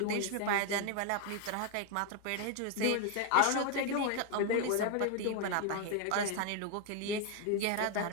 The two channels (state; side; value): different; both; correlation 0.01